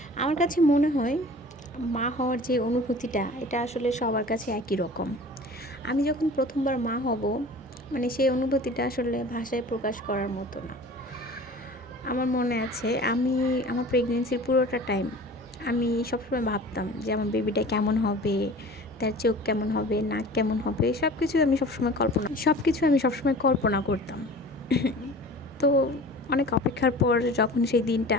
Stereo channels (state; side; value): normal; both; correlation 0.41